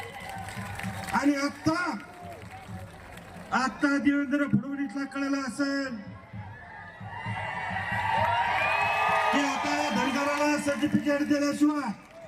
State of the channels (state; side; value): identical; both; correlation 1.00